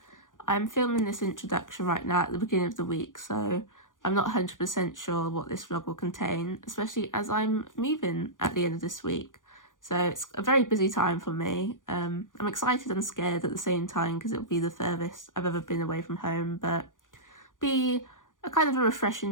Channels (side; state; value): right; late; 0.88 ms